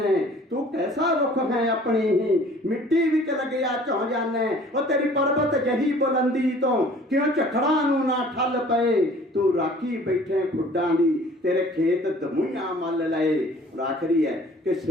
ਤੂੰ ਕੈਸਾ ਰੁੱਖ ਹੈ ਆਪਣੀ ਹੀ ਮਿੱਟੀ ਵਿੱਚ ਲੱਗਿਆ ਝੌਂ ਜਾਣਾ। ਉਹ ਤੇਰੀ ਪਰਬਤ ਜਹੀ ਬੁਲੰਦੀ ਤੋਂ ਕਿਉਂ ਝਖੜਾਂ ਨੂੰ ਨਾ ਠੱਲ ਪਏ। ਤੂੰ ਰਾਖੀ ਬੈਠੇ ਖੁੱਡਾਂ ਦੀ, ਤੇਰੇ ਖੇਤ ਦਮੂਈਆਂ ਮੱਲ ਲਏ। ਆਖਰੀ ਹੈ ਕਿ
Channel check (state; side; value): normal; both; correlation 0.51